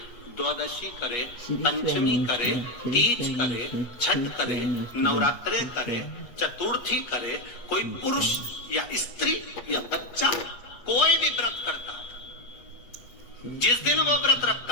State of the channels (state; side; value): late; right; 8.3 ms